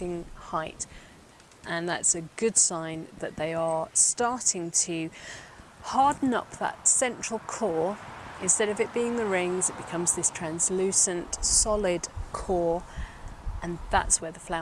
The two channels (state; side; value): identical; both; correlation 1.00